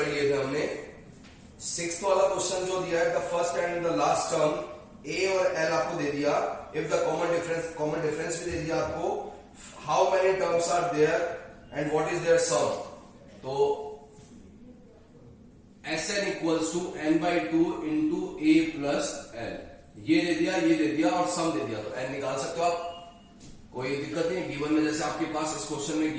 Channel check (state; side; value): identical; both; correlation 1.00